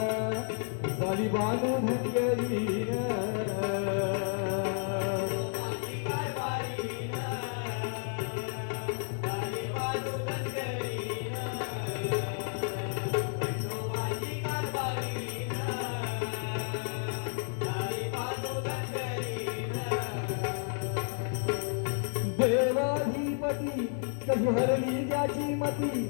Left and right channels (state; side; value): silent; right; 56 dB below the other